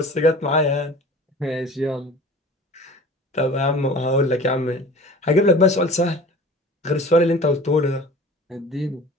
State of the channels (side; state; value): both; normal; correlation 0.41